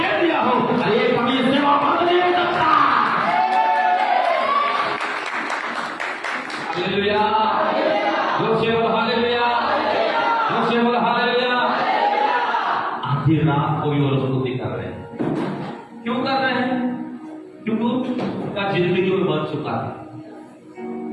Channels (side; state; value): both; identical; correlation 1.00